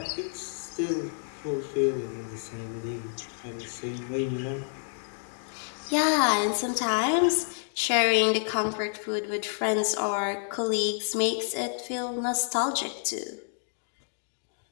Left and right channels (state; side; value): silent; right; digital silence